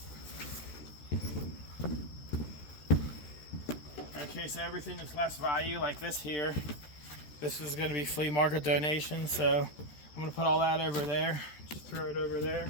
Okay, so everything that's less value, like this here, this is going to be flea market donation, so I'm going to put all that over there. Just throw it over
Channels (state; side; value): late; right; 13 ms